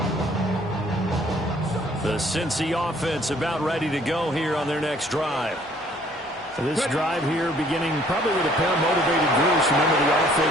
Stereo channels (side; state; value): both; normal; correlation 0.60